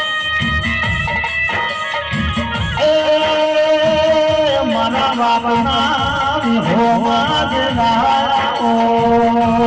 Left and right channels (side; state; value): both; identical; correlation 1.00